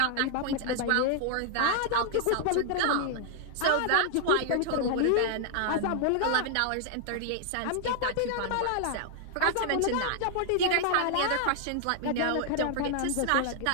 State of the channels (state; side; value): different; both; correlation 0.00